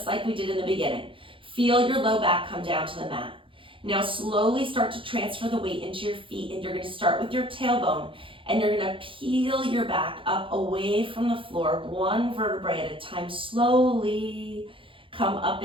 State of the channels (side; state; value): left; late; 0.25 ms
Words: like we did in the beginning. Feel your low back come down to the mat. Now slowly start to transfer the weight into your feet, and you're going to start with your tailbone, and you're going to peel your back up away from the floor, one vertebrae at a time. Slowly come up